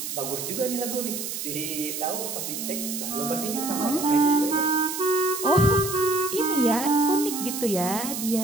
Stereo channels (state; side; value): noise; right; hiss, 5 dB below the sound